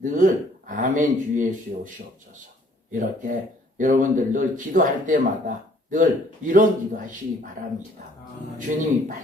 아멘 주 예수의 오시옵소서. 이렇게 여러분들 늘 기도할 때마다 늘 이런 기도하시기 바랍니다. 주님이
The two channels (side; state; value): both; normal; correlation 0.60